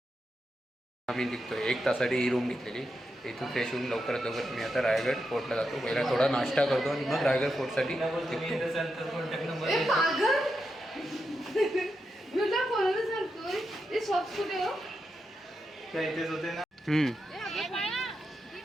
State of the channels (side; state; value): both; normal; correlation 0.86